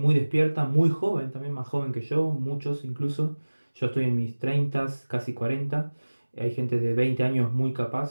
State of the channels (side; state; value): both; inverted; correlation -1.00